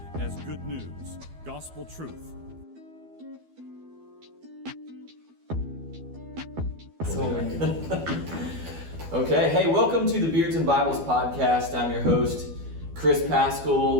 as good news, gospel truth. Okay, hey, welcome to the Beards and Bibles podcast. I'm your host, Chris Pascal,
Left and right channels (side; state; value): left; late; 12 ms